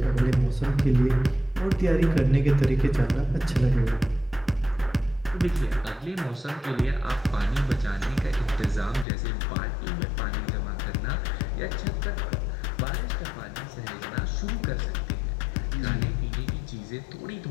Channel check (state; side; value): drops out; right; at 9.1 s